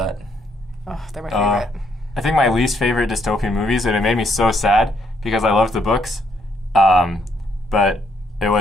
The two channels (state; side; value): normal; both; correlation 0.72